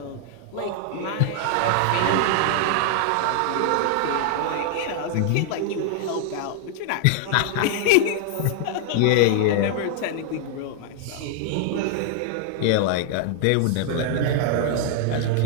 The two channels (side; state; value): both; different; correlation -0.01